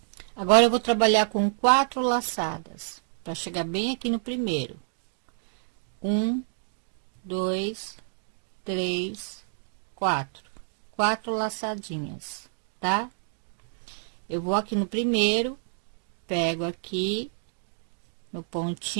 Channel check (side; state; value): left; silent; digital silence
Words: Agora, eu vou trabalhar com 4 laçadas, para chegar bem aqui no primeiro. 1, 2, 3, 4. 4 laçadinhas, tá? Eu vou aqui no primeiro, pego aqui no